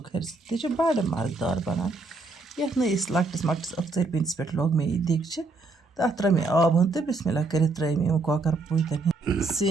تہِ چھِ بَڑٕ مَزٕدار بَنان. یَتھ نہٕ أسۍ لۄکٹِس مۄکٹِس ٲخژَرِ پیٖنتِس پٮ۪ٹھ لوگ مےٚ یہِ دیٖگچہِ تَتھ ترٛٲے مےٚ آب ہُن تہٕ بِسمِلّہ کٔرِتھ ترٛٲے مےٚ یِم کۄکَر پوٗتٮ۪ن ہِنٛدۍ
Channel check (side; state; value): left; quieter; 3.4 dB